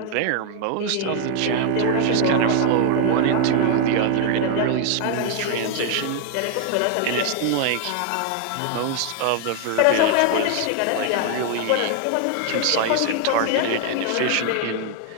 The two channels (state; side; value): different; both; correlation 0.00